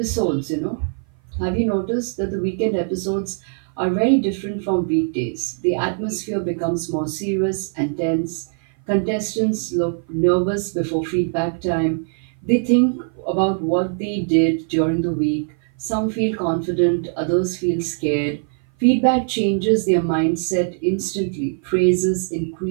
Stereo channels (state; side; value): silent; left; 56 dB below the other